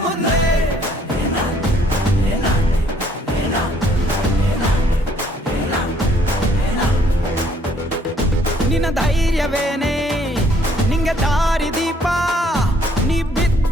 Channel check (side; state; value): both; normal; correlation 0.64